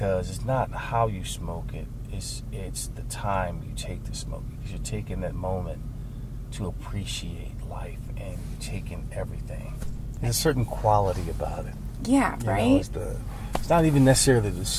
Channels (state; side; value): identical; both; correlation 1.00